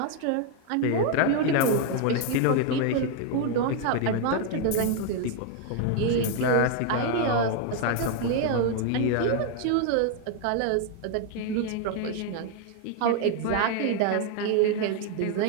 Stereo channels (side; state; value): both; different; correlation 0.01